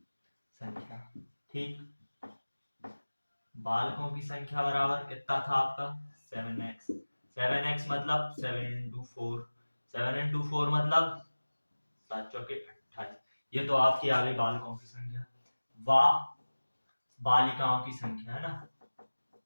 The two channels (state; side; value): inverted; both; correlation -1.00